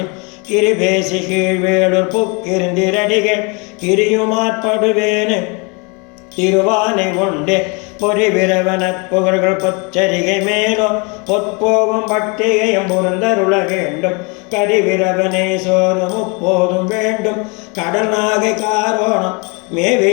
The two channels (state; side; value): quieter; right; 30.9 dB